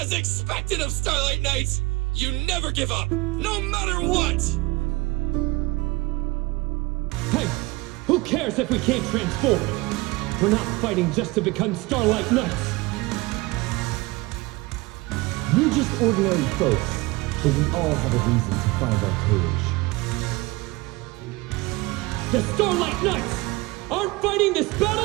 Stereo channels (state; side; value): quieter; left; 22.3 dB